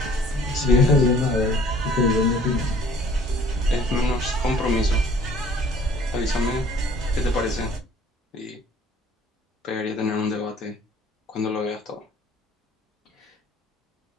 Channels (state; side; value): normal; both; correlation 0.54